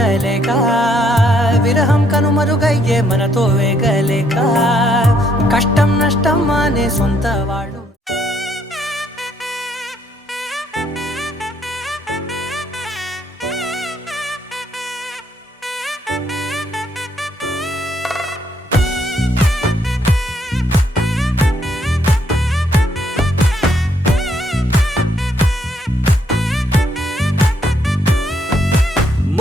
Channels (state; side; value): normal; both; correlation 0.71